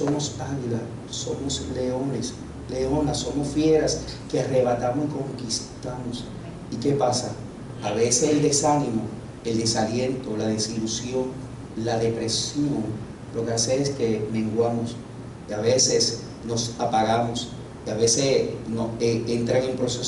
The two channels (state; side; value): identical; both; correlation 1.00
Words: águilas, somos leones, leonas, somos fieras que arrebatamos y conquistamos. ¿Y qué pasa? A veces el desánimo, el desaliento, la desilusión, la depresión, lo que hace es que menguamos, y a veces nos apagamos, y a veces entran en